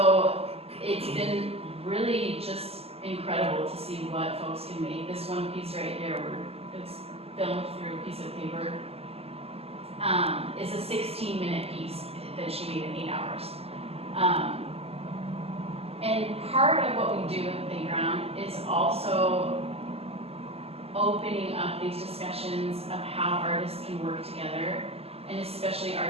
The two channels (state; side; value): late; left; 0.29 ms